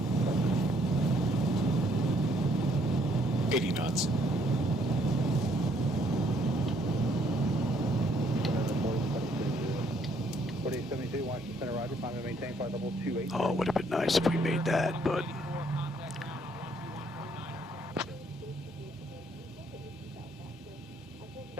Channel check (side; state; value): both; normal; correlation 0.67